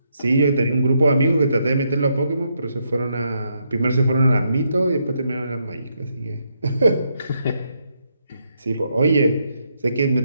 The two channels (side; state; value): both; inverted; correlation -0.78